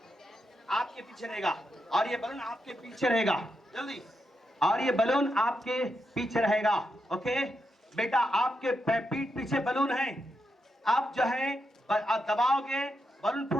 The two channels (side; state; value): both; normal; correlation 0.84